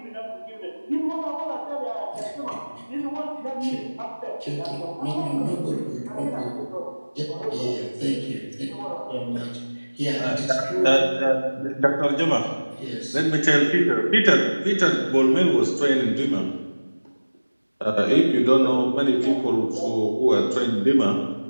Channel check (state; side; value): inverted; both; correlation -1.00